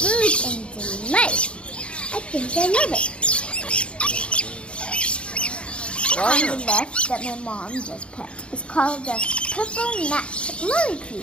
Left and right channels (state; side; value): late; right; 0.058 ms